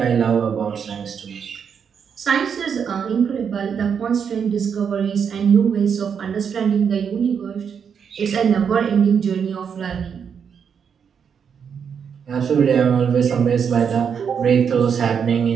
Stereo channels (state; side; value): quieter; left; 7.1 dB